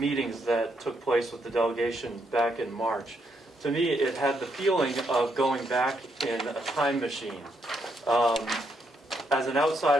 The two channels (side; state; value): both; normal; correlation 0.77